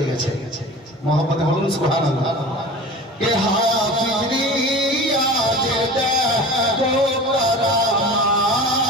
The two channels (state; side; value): normal; both; correlation 0.36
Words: গেছে। মোহাম্মদে বলুন সুবহানাল্লাহ। কে হাফিজ রিয়াজের দেখো